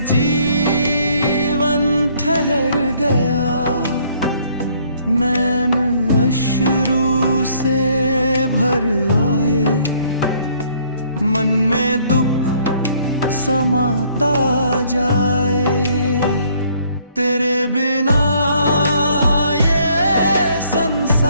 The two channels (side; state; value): both; inverted; correlation -0.63